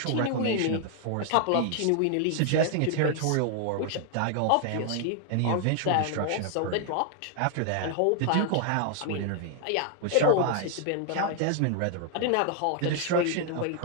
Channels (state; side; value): different; both; correlation 0.00